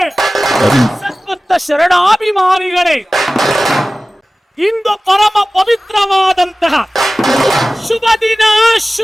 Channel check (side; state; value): both; normal; correlation 0.97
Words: ಸದ್ಭಕ್ತ ಶರಣಾಭಿಮಾನಿಗಳೇ, ಇಂದು ಪರಮ ಪವಿತ್ರವಾದಂತಹ ಶುಭ ದಿನ,